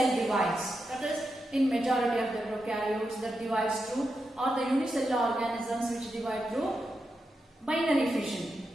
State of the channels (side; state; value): both; normal; correlation 0.87